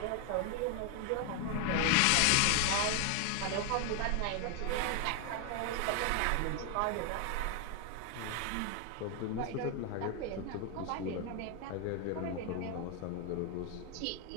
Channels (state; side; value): different; both; correlation 0.01